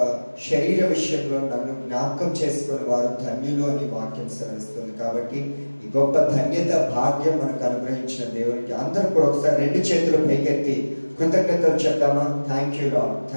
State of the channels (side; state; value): both; inverted; correlation -1.00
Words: శరీర విషయంలో నన్ను జ్ఞాపకం చేసుకున్న వారు ధన్యులు అని వాక్యం సెలవిస్తుంది. కాబట్టి ఈ గొప్ప ధన్యత, భాగ్యం మనకు అనుగ్రహించిన దేవునికి అందరూ కూడా ఒకసారి 2 చేతులు పైకెత్తి కృతజ్ఞతలు చెప్తామా? Thank you Lord,